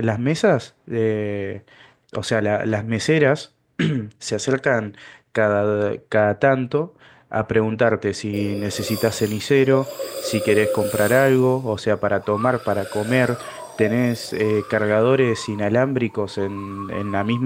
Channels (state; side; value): identical; both; correlation 1.00